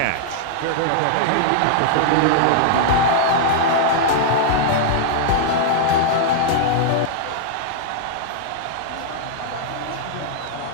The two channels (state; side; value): different; both; correlation -0.02